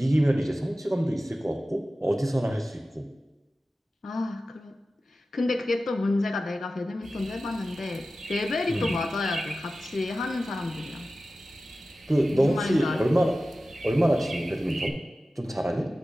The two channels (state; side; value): normal; both; correlation 0.95